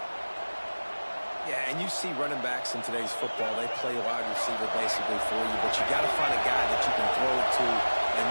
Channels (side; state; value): both; inverted; correlation -1.00